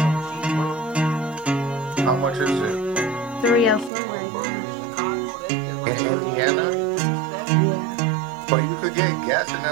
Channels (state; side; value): drops out; left; at 3.9 s